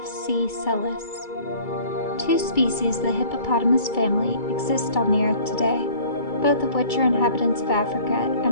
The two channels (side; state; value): right; late; 2.3 ms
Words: Sellis. Two species of the hippopotamus family exist on the earth today, both of which are inhabitants of Africa